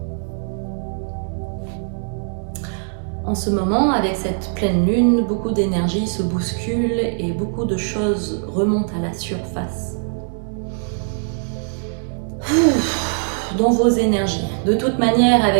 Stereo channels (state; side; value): silent; left; digital silence